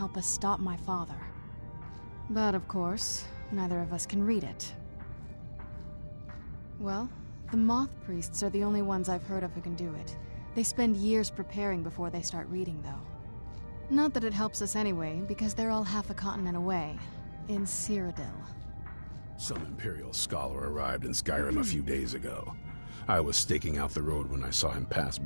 us stop my father. But of course, neither of us can read it. Well, the Moth Priests are the only ones I've heard of who can do it. They spend years preparing before they start reading, though. Not that it helps us anyway, because they're all half a continent away, in Cyrodiil. Some Imperial scholar arrived in Skyrim a few days ago. I was staking out the road when I saw him pass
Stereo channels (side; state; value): both; inverted; correlation -1.00